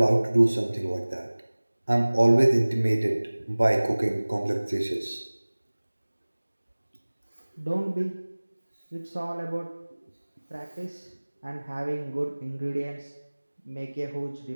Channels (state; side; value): inverted; both; correlation -1.00